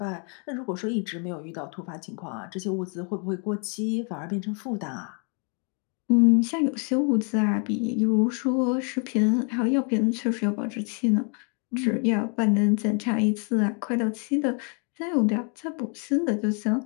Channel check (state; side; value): quieter; right; 39.1 dB